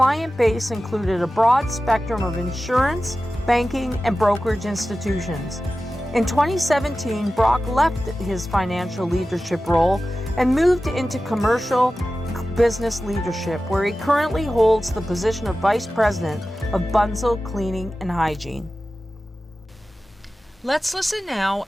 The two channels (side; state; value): both; normal; correlation 0.95